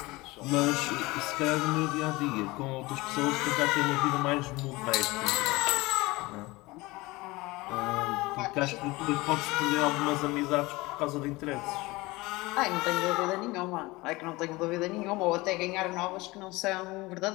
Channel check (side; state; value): right; quieter; 21.7 dB